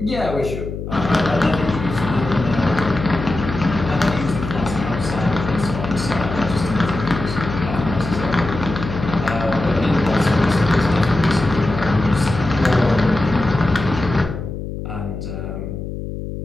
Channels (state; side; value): noise; left; hum, 7 dB below the sound